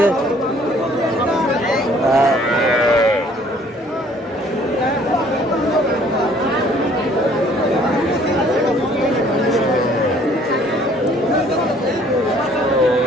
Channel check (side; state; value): both; normal; correlation 0.58